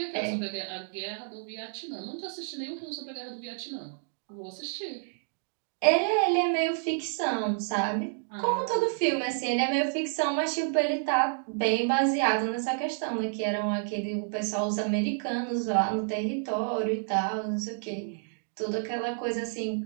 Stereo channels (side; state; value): left; silent; digital silence